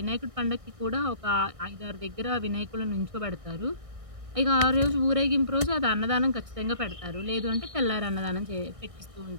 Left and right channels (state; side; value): late; left; 1.6 ms